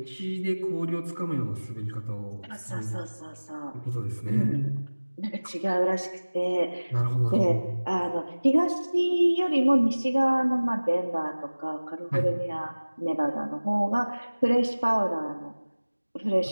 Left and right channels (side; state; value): both; inverted; correlation -1.00